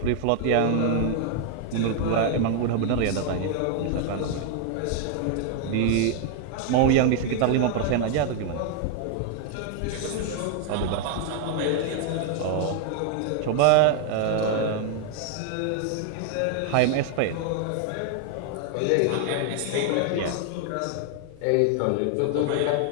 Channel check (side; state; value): both; different; correlation 0.00